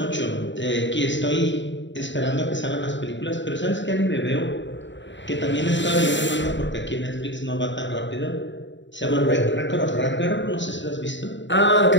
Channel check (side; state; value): right; late; 0.53 ms